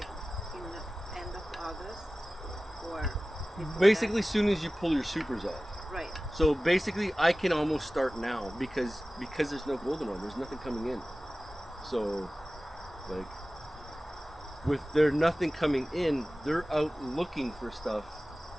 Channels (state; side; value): normal; both; correlation 0.96